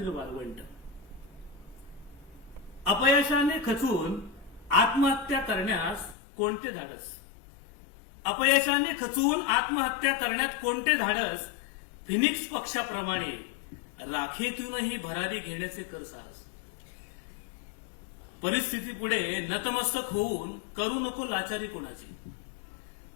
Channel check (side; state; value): right; drops out; at 6.2 s